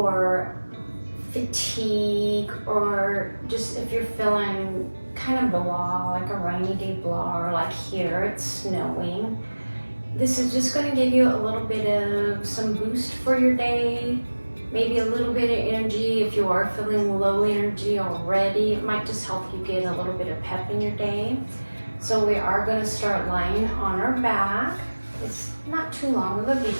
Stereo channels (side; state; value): both; inverted; correlation -1.00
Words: fatigue or just if you're feeling kind of blah, like a rainy day blah, or like here it's snowing. This is just going to give you a little bit of some boost for your day. Maybe a little bit of energy if you are feeling low energy already. It might just help you get a little bit of pep in your day. So we are going to start lying on our back. It's not too long of a